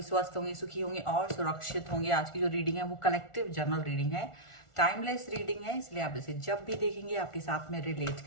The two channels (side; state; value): right; late; 1.4 ms